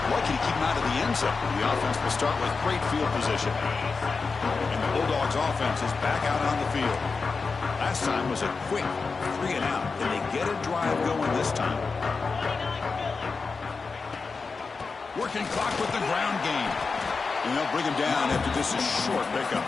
Lucky to keep him out of the end zone. The offense will start with great field position. And the Bulldogs offense is back out on the field. Last time was a quick 3 and out. And they get a drive going this time. Working clock with the ground game. And they'll bring him down after this is short pickup.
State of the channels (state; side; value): quieter; right; 4.5 dB